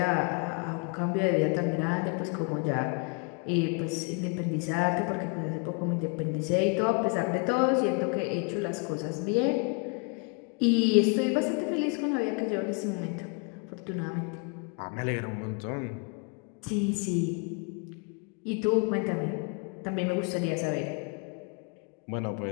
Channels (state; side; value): quieter; right; 33.9 dB